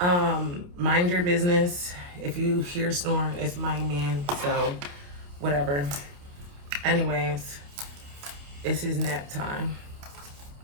Mind your business. If you hear snoring, it's my man, so whatever. Anyways, it's his nap time.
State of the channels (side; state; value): left; late; 28 ms